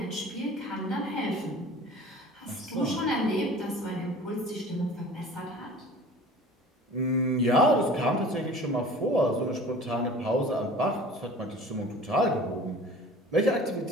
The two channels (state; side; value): normal; both; correlation 0.43